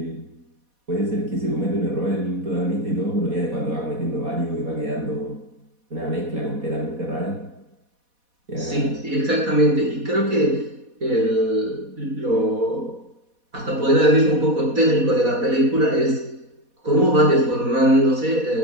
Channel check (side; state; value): left; late; 4.1 ms